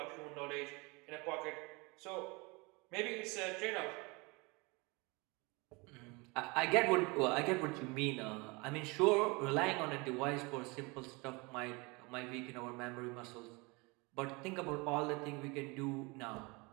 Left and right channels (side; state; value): left; quieter; 27.1 dB